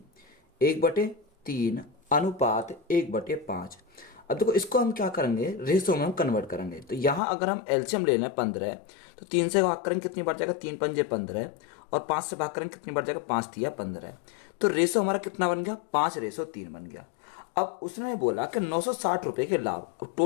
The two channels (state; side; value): drops out; right; at 7.2 s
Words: 1/3 अनुपात 1/5। अब देखो इसको हम क्या करेंगे, रेशो में हम कन्वर्ट करेंगे। तो यहां अगर हम एलसीएम ले लें 15, तो 3 से भाग करेंगे कितनी बढ़ जाएगा, 3 पंजे 15, और 5 से भाग करेंगे कितनी बढ़ जाएगा, 5 तिया 15। तो रेशो हमारा कितना बन गया, 5:3 बन गया। अब उसने बोला कि 960 रुपए के लाभ, और